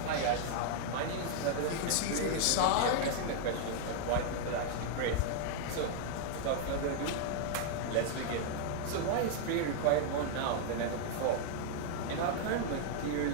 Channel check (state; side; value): different; both; correlation -0.01